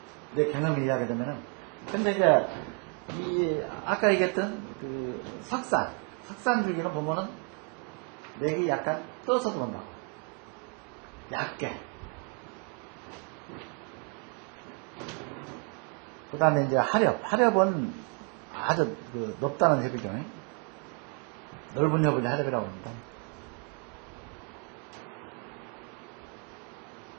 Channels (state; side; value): quieter; left; 39.2 dB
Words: 내 경험을 이해하게 되면은 근데 이제 아까 얘기했던 석산 줄기로 보면은 맥이 약간 떠서 들어온다. 얇게. 그 다음에 이제 하렵은 아주 넓다는 협이죠. 넓은 협을 하렵이라고 합니다.